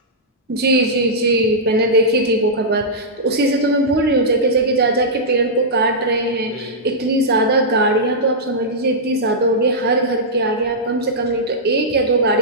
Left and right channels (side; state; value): both; normal; correlation -0.12